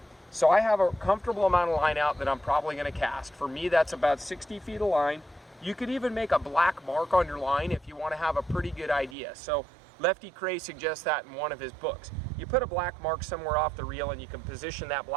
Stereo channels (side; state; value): left; drops out; at 9.2 s